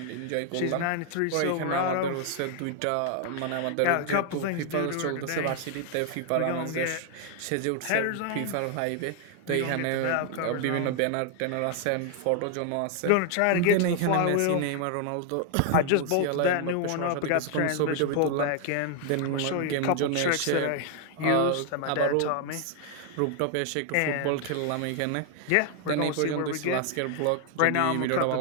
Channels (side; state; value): both; different; correlation 0.00